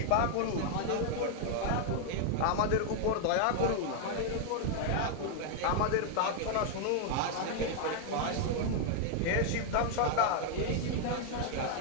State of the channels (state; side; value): different; both; correlation 0.00